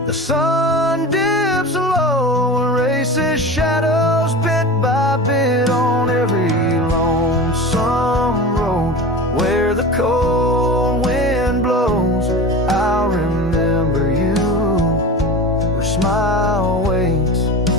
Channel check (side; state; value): both; normal; correlation 0.31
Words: The sun dips low and races shadows bit by bit on every lonesome road where the cold wind blows. I'll remember you where smile waits